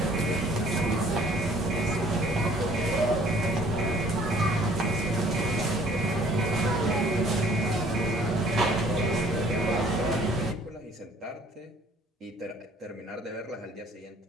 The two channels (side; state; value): both; normal; correlation 0.56